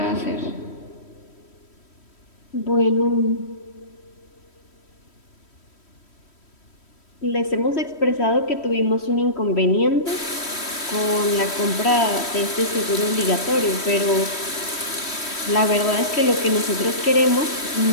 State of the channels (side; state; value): right; late; 3.1 ms